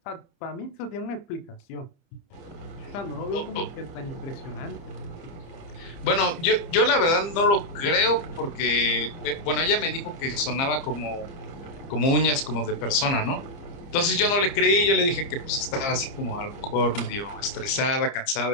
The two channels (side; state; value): right; late; 30 ms